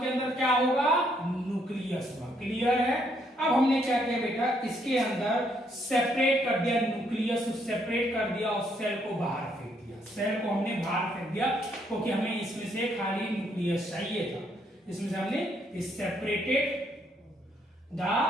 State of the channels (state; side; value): normal; both; correlation 0.72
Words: अंदर क्या होगा, न्यूक्लियस होगा, क्लियर है। अब हमने क्या किया बेटा, इसके अंदर सेपरेट कर दिया, न्यूक्लियस सेपरेट कर दिया और सेल को बाहर फेंक दिया, सेल को हमने बाहर फेंक दिया क्योंकि हमें इसमें से खाली न्यूक्लियस चाहिए था। इसमें से हमने सेपरेटेड द